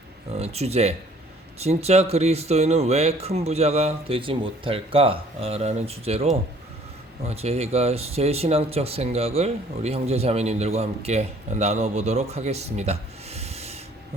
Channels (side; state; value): both; normal; correlation 0.57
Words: 주제, 진짜 그리스도인은 왜 큰 부자가 되지 못할까? 라는 주제로 제가 제 신앙적 생각을 우리 형제자매님들과 함께 나눠보도록 하겠습니다.